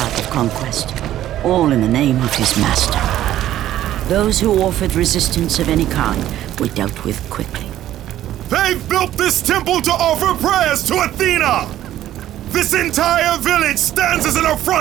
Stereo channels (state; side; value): quieter; left; 12.9 dB